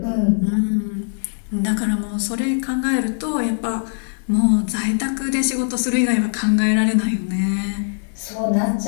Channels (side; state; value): right; silent; digital silence